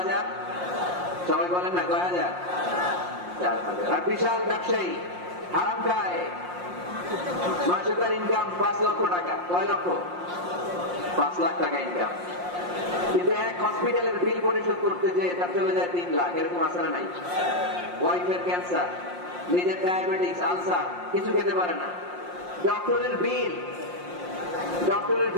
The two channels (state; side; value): late; left; 5.6 ms